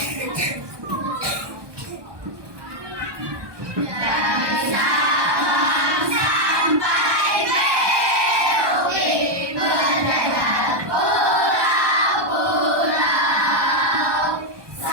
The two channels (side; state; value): left; late; 1.2 ms